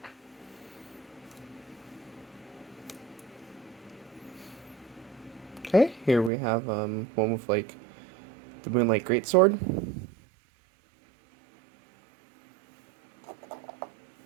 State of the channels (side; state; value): left; drops out; at 6.3 s